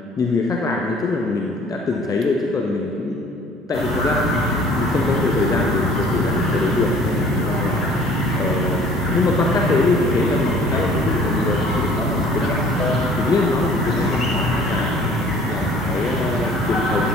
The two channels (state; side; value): normal; both; correlation 0.52